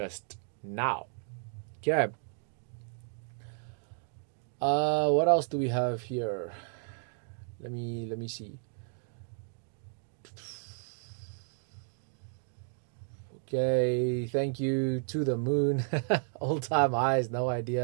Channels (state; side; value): silent; left; 56 dB below the other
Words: now. Okay. What else do we have here? Let me see. Okay, thank you to the moon. Old time highs, no